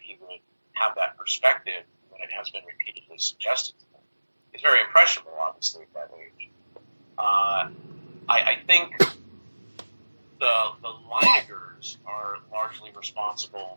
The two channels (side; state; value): both; inverted; correlation -1.00